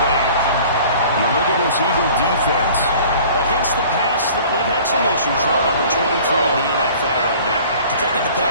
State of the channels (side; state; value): both; inverted; correlation -0.48